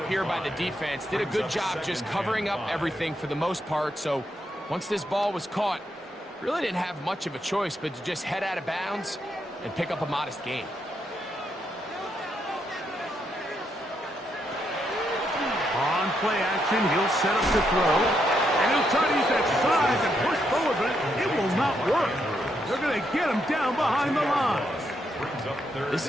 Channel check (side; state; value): both; normal; correlation 0.79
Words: here by the defense. Did a good job just covering up everything for the most part. So once this ball was caught, really didn't have much of a choice but to just head out of bounds and pick up a modest gain. On play action, he'll set up the throw. And he'll try to use that size and push forward, but it will not work. They're going to get him down behind the line. This